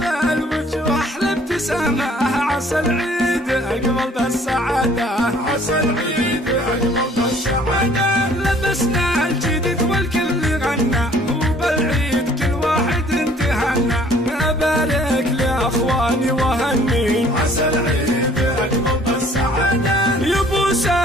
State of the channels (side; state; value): both; normal; correlation 0.56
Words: الوجوه أحلى ابتسامة. عسى العيد أقبل بالسعادة، عسى العيد أقبل بالسعادة. لبسنا الجديد والكل غنى وبالعيد كل واحد انتهنا. أبارك لأخواني وهني، عسى العيد أقبل بالسعادة. يا ابو